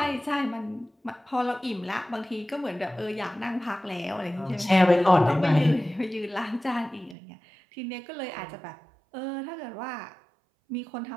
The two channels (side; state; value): left; drops out; at 7.2 s